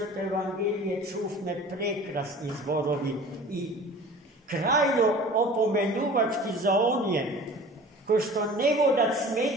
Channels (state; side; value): normal; both; correlation 0.42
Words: evangelije čufme prekrasni zborovi i krajno opomenuvački za onje ko što ne voda